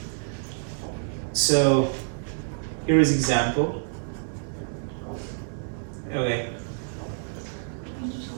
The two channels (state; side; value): silent; left; 60 dB below the other